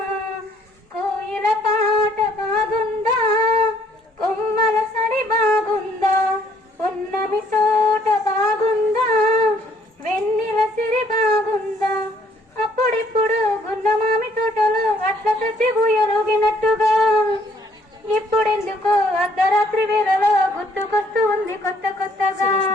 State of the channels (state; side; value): normal; both; correlation 0.64